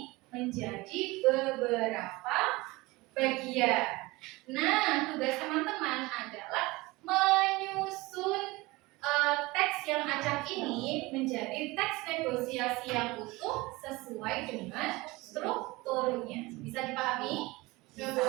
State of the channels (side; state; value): left; quieter; 22.0 dB